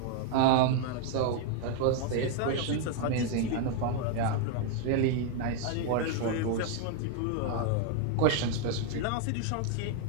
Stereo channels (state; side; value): different; both; correlation 0.00